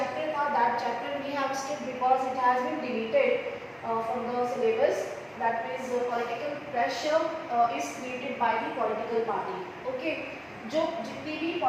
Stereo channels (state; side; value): identical; both; correlation 1.00